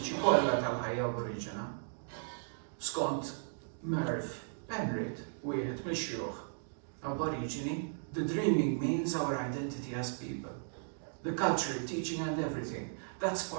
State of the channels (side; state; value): left; silent; digital silence